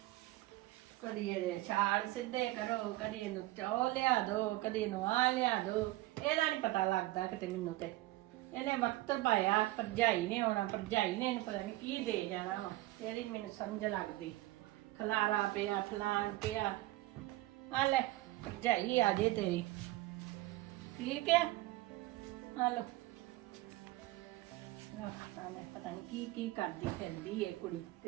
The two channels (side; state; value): left; quieter; 17.9 dB